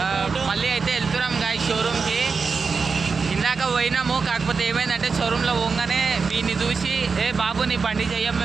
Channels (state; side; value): quieter; left; 5.0 dB